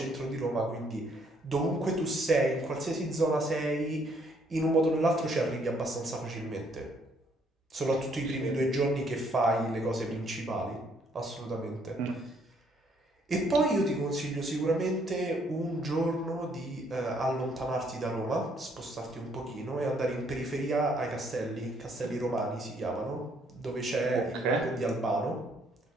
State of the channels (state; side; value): normal; both; correlation 0.67